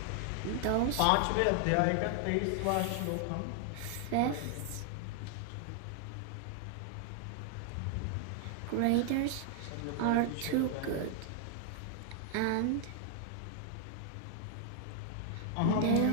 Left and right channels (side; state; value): both; different; correlation 0.00